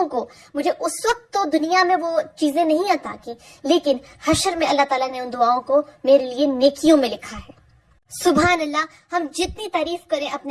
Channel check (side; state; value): both; identical; correlation 1.00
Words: کو مجھے اس وقت تو دنیا میں وہ چیزیں نہیں عطا کی، لیکن حشر میں اللہ تعالیٰ نے ان دعاؤں کو میرے لیے نیکیوں میں لکھا ہے. سبحان اللہ. ہم جتنی تعریف کریں